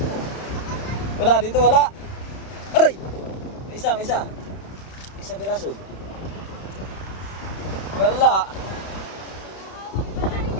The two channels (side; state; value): right; late; 31 ms